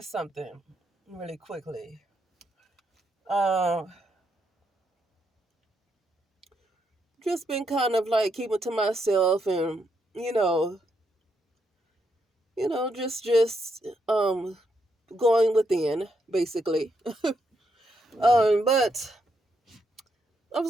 something really quickly. Uh, just been kind of like keeping to myself and you know, just going within basically. But I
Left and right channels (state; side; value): normal; both; correlation 0.79